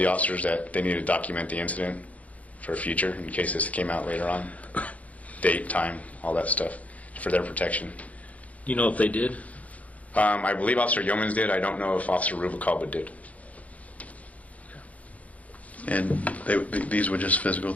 officers that they needed to document the incident for future in case this came out later on. Date, time, all that stuff, for their protection. You know if they did? I believe Officer Yeomans did. I don't know if Officer Rubalcaba did. And these were just physical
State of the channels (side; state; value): right; late; 0.069 ms